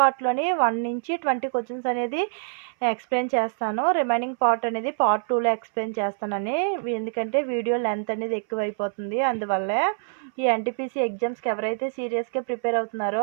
1 నుంచి 20 క్వశ్చన్స్ అనేది ఎక్స్ప్లెయిన్ చేస్తాను. రిమైనింగ్ పార్ట్ అనేది పార్ట్ 2లో ఎక్స్ప్లెయిన్ చేస్తానని, ఎందుకంటే వీడియో లెంత్ అనేది ఎక్కువైపోతుంది. అందువల్లే ఈ ఎన్టీపీసీ ఎగ్జామ్స్కి ఎవరైతే సీరియస్గా ప్రిపేర్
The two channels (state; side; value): silent; left; 62 dB below the other